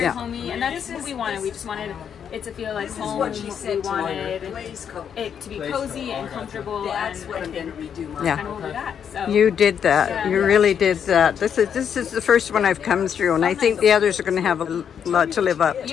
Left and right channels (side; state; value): right; quieter; 8.0 dB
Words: homey, and that's what we wanted. We just wanted it to feel like home. We wanted it to be cozy and comfortable, and kind of over that. So you did that. You really did that. This is the first one I've come through, and I think the others are going to have a lot to live up